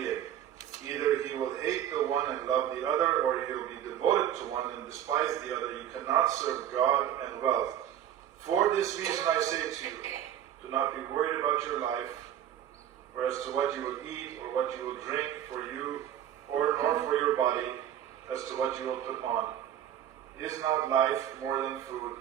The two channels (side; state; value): left; quieter; 10.7 dB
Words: է. Either he will hate the one and love the other, or he will be devoted to one and despise the other. You cannot serve God and wealth. For this reason I say to you, do not be worried about your life, or as to what you will eat or what you will drink for you, or nor for your body, as to what you will put on. Is not life more than food?